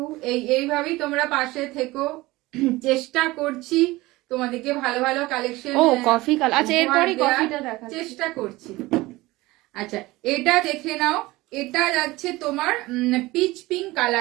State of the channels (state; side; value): quieter; left; 19.9 dB